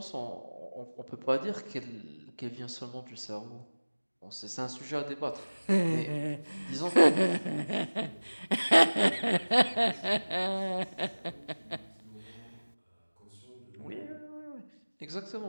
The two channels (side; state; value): both; inverted; correlation -1.00